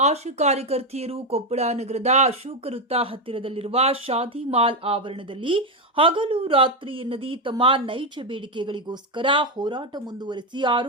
ಆಶಾ ಕಾರ್ಯಕರ್ತೆಯರು ಕೊಪ್ಪಳ ನಗರದ ಅಶೋಕ ವೃತ್ತ ಹತ್ತಿರದಲ್ಲಿರುವ ಶಾದಿ ಮಾಲ್ ಆವರಣದಲ್ಲಿ ಹಗಲು ರಾತ್ರಿ ಎನ್ನದೇ ತಮ್ಮ ನೈಜ ಬೇಡಿಕೆಗಳಿಗೋಸ್ಕರ ಹೋರಾಟ ಮುಂದುವರೆಸಿ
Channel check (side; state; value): both; normal; correlation 0.08